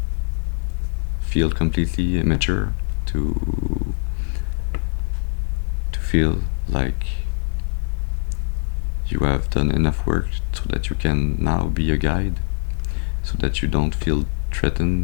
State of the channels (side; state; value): right; silent; digital silence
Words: feel completely mature, to feel like you have done enough work so that you can now be a guide, so that you don't feel